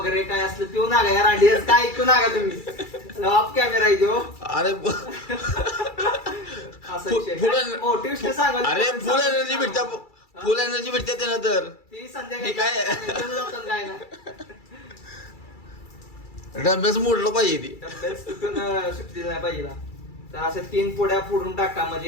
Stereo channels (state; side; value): late; right; 2.3 ms